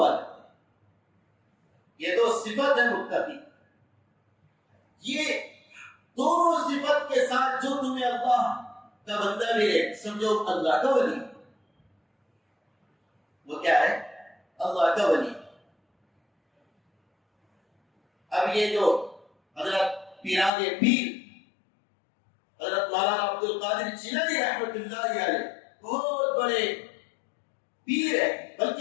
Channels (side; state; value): right; drops out; at 20.5 s